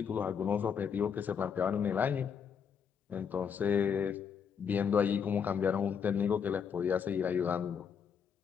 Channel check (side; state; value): right; quieter; 7.1 dB